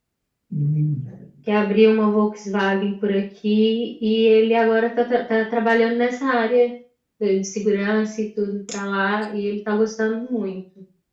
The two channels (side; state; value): both; identical; correlation 1.00